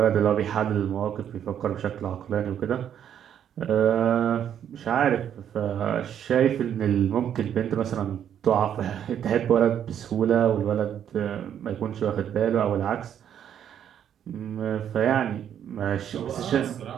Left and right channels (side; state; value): left; quieter; 9.4 dB